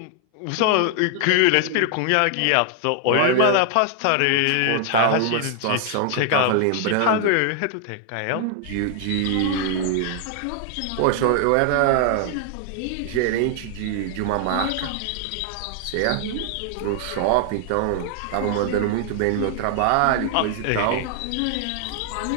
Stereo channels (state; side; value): different; both; correlation 0.00